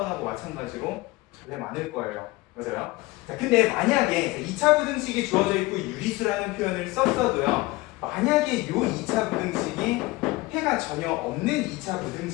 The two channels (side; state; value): right; quieter; 20.9 dB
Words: 마찬가지로 전래 많을 거예요. 맞아요? 자, 근데 만약에 2차 부등식이 주어져 있고 유리수라는 표현을 썼어도요. 만약에 이 2차 부등식이 해가 전혀 없는 2차